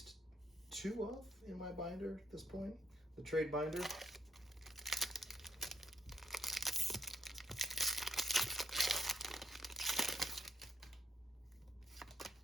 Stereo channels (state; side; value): normal; both; correlation 0.74